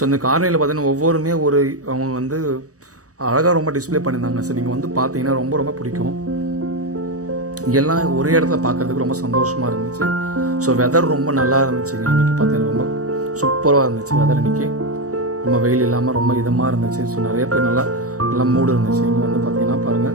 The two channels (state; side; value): late; left; 0.66 ms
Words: இந்த கார்னியரில் பார்த்தீங்கன்னா ஒவ்வொருமே அவங்க வந்து அழகாக ரொம்ப டிஸ்பிளே பண்ணியிருந்தாங்க. ஸோ நீங்கள் வந்து பார்த்தீங்கன்னா ரொம்ப ரொம்ப பிடிக்கும். எல்லாம் ஒரே இடத்துல பார்க்கறதுக்கு ரொம்ப சந்தோஷமாக இருந்துச்சு. ஸோ வெதர் ரொம்ப நல்லா இருந்துச்சுங்க. இன்றைக்கி பார்த்தீங்கன்னா ரொம்ப சூப்பராக இருந்துச்சு வெதர். இன்றைக்கி ரொம்ப வெயில் இல்லாமல் ரொம்ப இதமாக இருந்துச்சு. ஸோ நிறைய பேர் நல்லா மூடு இருந்துச்சு. இங்கே வந்து பார்த்தீங்கன்னா